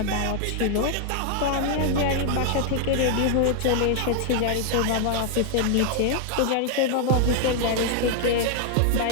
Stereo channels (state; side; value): different; both; correlation 0.00